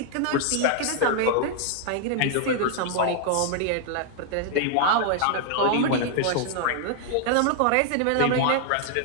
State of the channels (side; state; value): both; different; correlation 0.00